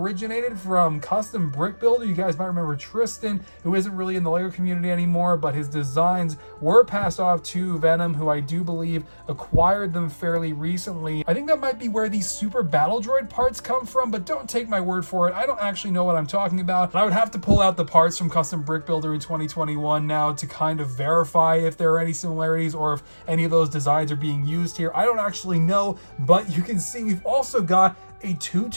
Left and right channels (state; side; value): inverted; both; correlation -1.00